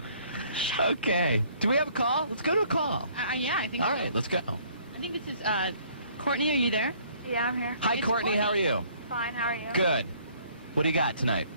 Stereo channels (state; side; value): inverted; both; correlation -0.60